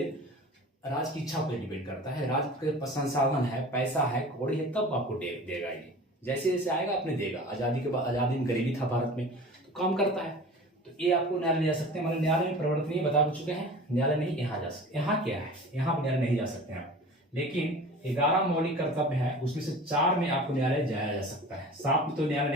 राज्य की इच्छा पर डिपेंड करता है। राज्य के संसाधन है, पैसा है, कौड़ी है, तब आपको देगा। ये जैसे जैसे आएगा अपने देगा। आजादी के बाद, आजादी में गरीबी था भारत में, तो काम करता है, तो ये आपको न्यायालय जा सकते हैं। हमारे न्यायालय में परिवर्तनीय बता चुके हैं, न्यायालय नहीं यहाँ जा सकते। यहाँ क्या है? यहाँ पर न्यायालय नहीं जा सकते हैं आप, लेकिन 11 मौलिक कर्तव्य है, उसमें से 4 में आपको न्यायालय जाया जा सकता है। 7 में तो न्यायालय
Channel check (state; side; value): normal; both; correlation 0.39